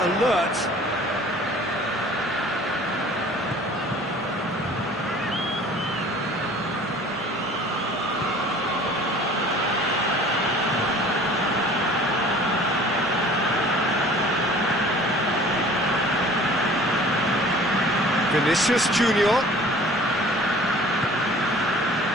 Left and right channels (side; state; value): both; normal; correlation 0.48